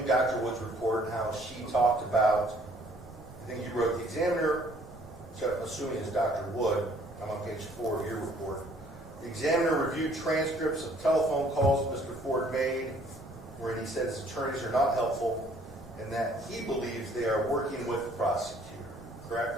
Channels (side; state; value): both; normal; correlation 0.59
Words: Dr. Wood's report and how she talked about, I think you wrote the examiner, so I'm assuming it's Dr. Wood, I'm on page 4 of your report. The examiner reviewed transcripts of telephone calls Mr. Ford made where he said his attorneys are not helpful and that he believes they are working with the prosecutor,